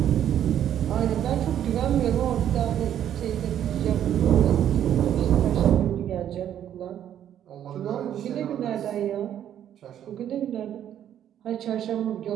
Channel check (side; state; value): left; quieter; 10.4 dB